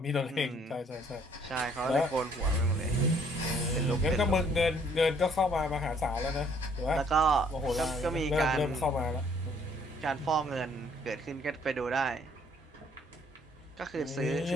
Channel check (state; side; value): normal; both; correlation 0.62